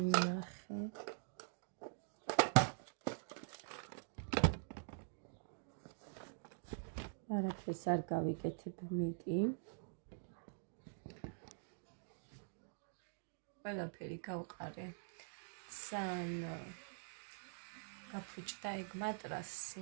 არაფერს არ გავიკეთებ მეტი ყველაფერი გავყარე ძალიან გაფუჭდა ეგ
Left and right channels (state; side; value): silent; left; digital silence